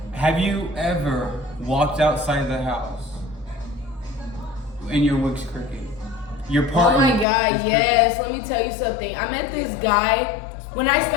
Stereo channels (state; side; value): drops out; right; at 7.2 s